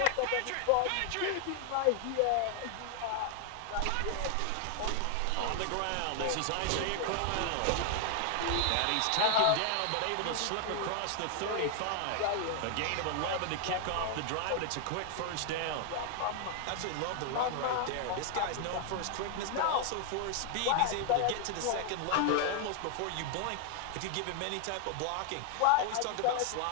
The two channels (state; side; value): different; both; correlation 0.00